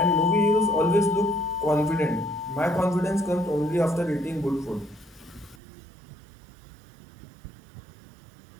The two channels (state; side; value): drops out; left; at 5.6 s